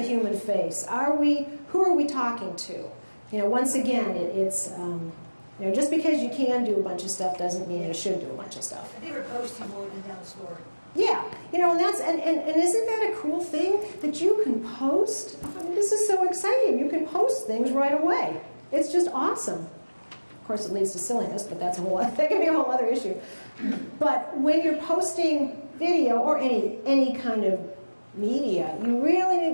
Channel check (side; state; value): both; inverted; correlation -1.00